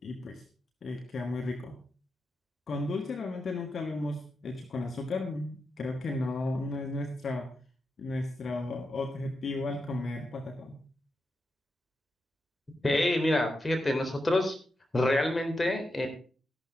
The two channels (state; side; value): normal; both; correlation 0.87